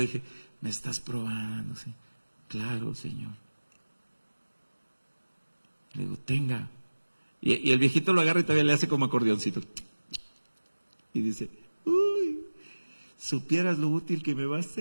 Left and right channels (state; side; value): inverted; both; correlation -1.00